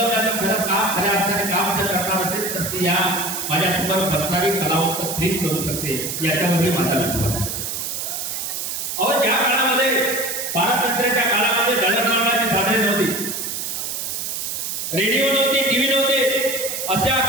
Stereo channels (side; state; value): right; noise; hiss, 4 dB below the sound